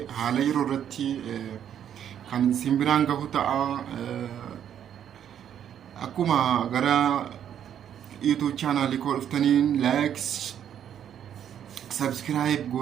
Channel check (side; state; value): left; quieter; 9.5 dB